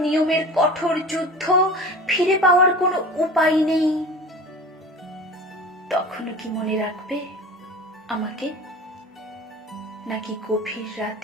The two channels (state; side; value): normal; both; correlation 0.36